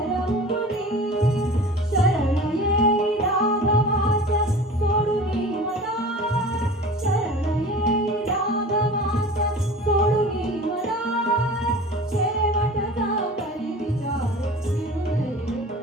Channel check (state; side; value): normal; both; correlation 0.39